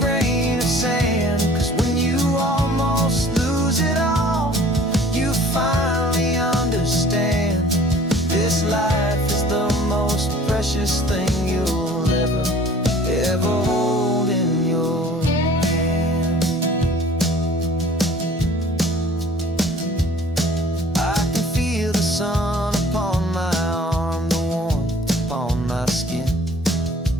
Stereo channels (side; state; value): both; normal; correlation 0.51